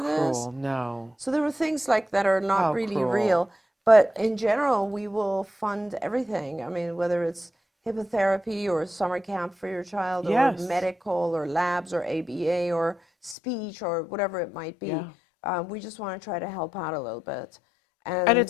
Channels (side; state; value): right; drops out; at 13.4 s